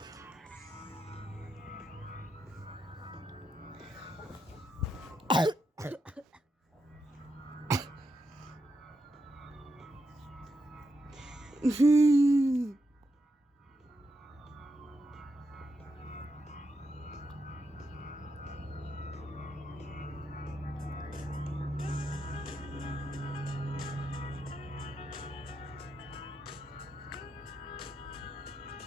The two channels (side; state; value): both; normal; correlation 0.83